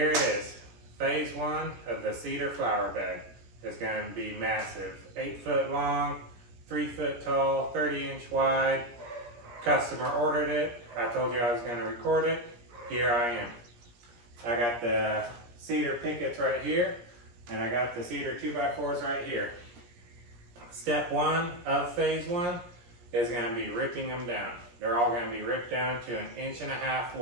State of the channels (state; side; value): late; left; 17 ms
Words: it is, phase 1 of the cedar flower bed. It's going to be massive, 8 foot long, 3 foot tall, 30-inch wide. Customer ordered it. I told you I was going to record it. Here I am. I got the cedar pickets right here, and I got the cedar 2x4s right here. Step 1 of phase 1 is going to be ripping them down. They're all going to be ripped down to 1.5 inches